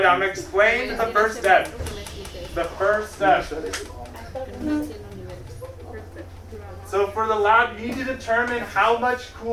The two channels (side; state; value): both; identical; correlation 1.00